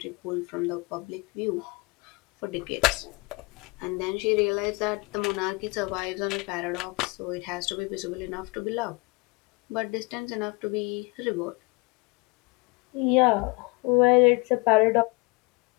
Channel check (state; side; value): quieter; right; 27.6 dB